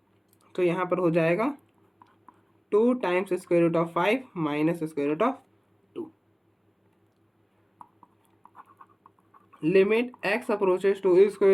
तो यहाँ पर हो जाएगा 2 times square root of 5 minus square root of 2। Limit x approaches to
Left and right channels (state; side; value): identical; both; correlation 1.00